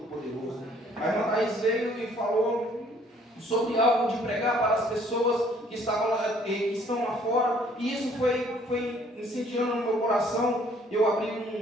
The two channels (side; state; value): both; normal; correlation 0.60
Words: A irmã Thaís veio e falou sobre algo de pregar para as pessoas que estão lá fora, e isso foi incendiando no meu coração. Eu